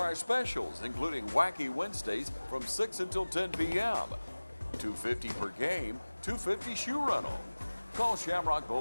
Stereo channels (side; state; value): both; inverted; correlation -1.00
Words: specials, including Wacky Wednesdays from 6 until 10 p.m. $2.50 per game, $2.50 shoe rental. Call Shamrock